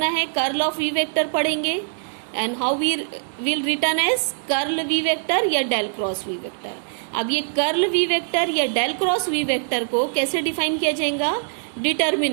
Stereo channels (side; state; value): left; silent; digital silence